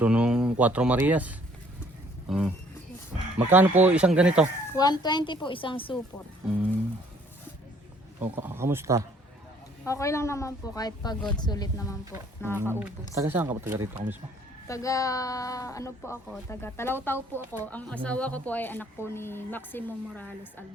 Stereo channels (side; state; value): both; normal; correlation 0.61